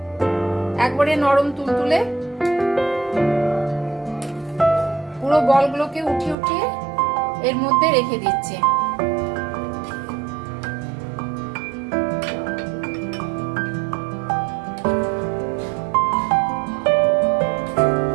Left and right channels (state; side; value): drops out; left; at 6.4 s